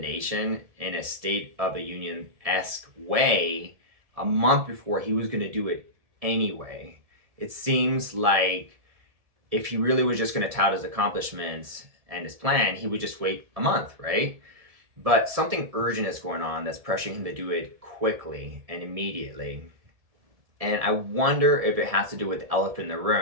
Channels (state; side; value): late; left; 1.7 ms